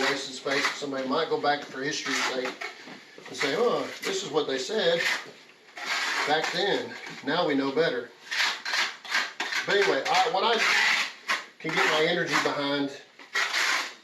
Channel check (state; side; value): identical; both; correlation 1.00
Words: space. Somebody might go back for history's sake and say, oh, this is what they said back then. Now we know better. But anyway, what I can get my energy behind